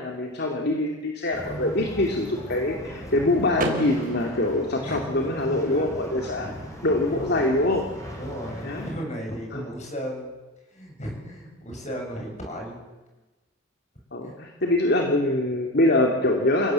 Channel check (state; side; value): normal; both; correlation 0.23